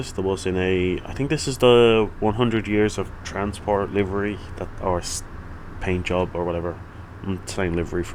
is the bus in a. I think this is the 100 years of transport livery that or paint job or whatever. I'm saying livery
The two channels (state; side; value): identical; both; correlation 1.00